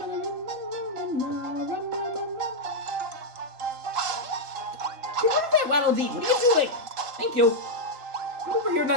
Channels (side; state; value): left; late; 3.7 ms